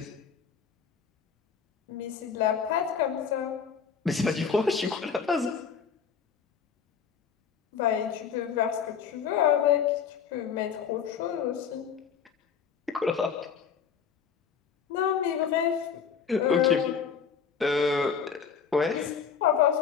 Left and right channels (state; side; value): quieter; right; 6.8 dB